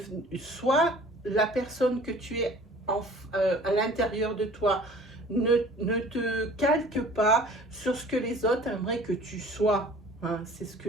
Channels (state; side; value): normal; both; correlation 0.48